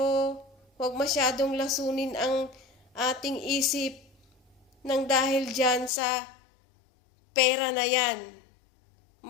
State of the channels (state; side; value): drops out; right; at 5.9 s